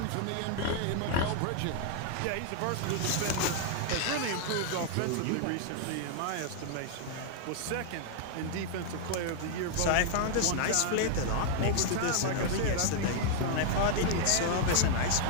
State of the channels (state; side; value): different; both; correlation -0.01